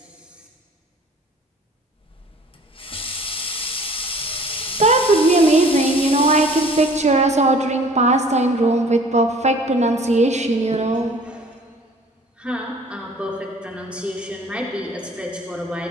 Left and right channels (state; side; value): normal; both; correlation 0.51